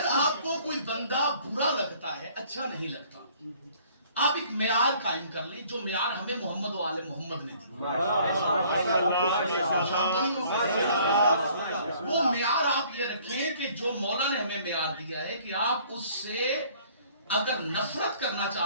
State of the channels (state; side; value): inverted; both; correlation -0.57